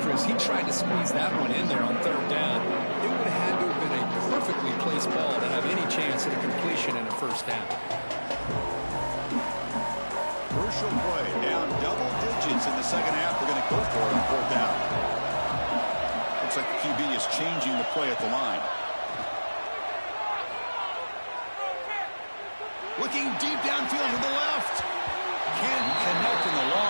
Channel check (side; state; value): both; inverted; correlation -1.00